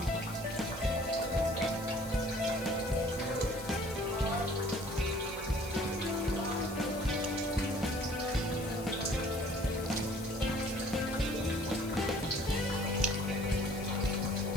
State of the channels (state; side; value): noise; left; hiss, 15 dB below the sound